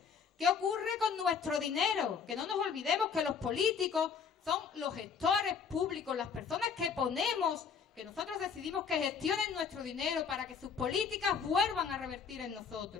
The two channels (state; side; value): quieter; right; 6.3 dB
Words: ¿Qué ocurre con nuestro dinero? Que no nos olvidemos que los políticos son los gestores públicos, las personas que ponemos, que nosotros decidimos que gestionen nuestro dinero para que sus políticas vuelvan a revertir en